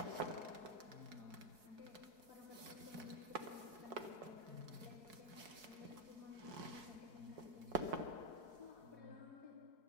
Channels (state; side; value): late; left; 4.6 ms